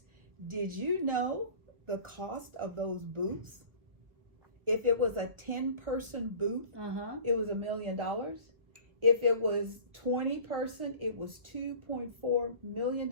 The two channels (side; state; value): left; late; 1.2 ms